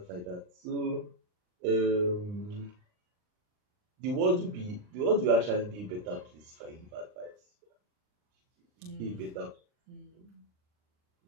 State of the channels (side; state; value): left; late; 39 ms